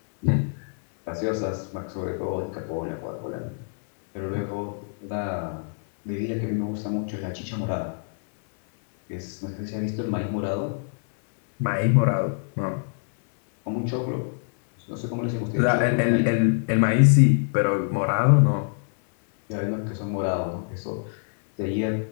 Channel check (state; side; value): silent; right; digital silence